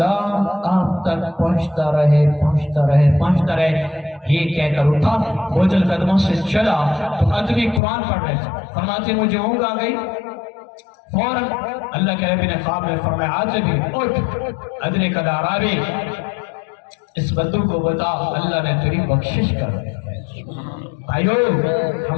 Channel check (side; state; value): right; drops out; at 7.8 s